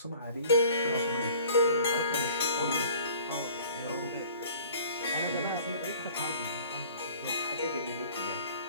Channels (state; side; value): inverted; both; correlation -0.50